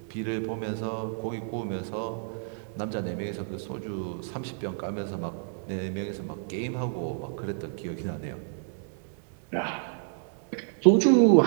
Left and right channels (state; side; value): silent; left; digital silence